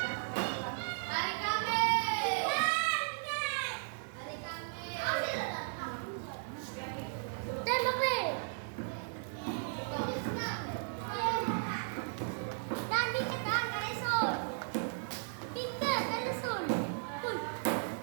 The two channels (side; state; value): left; silent; 54 dB below the other